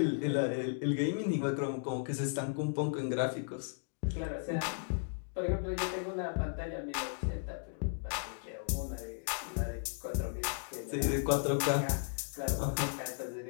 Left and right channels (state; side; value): silent; right; digital silence